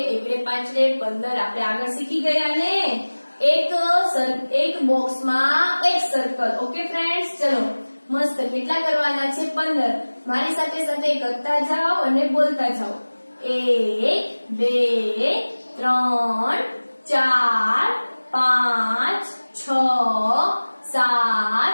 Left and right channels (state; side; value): inverted; both; correlation -1.00